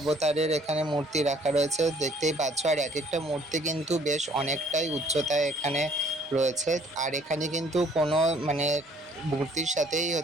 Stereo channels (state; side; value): normal; both; correlation 0.59